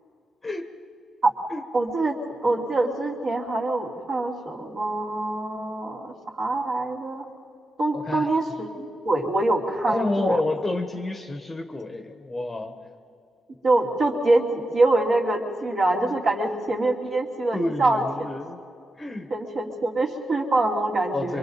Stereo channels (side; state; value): both; normal; correlation 0.89